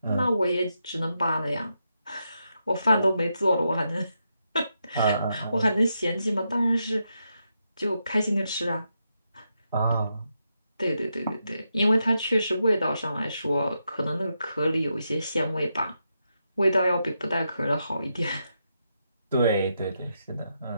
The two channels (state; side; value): inverted; both; correlation -0.84